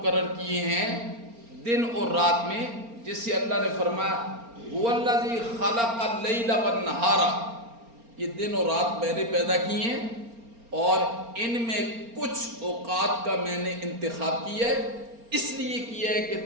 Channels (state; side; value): late; left; 4.3 ms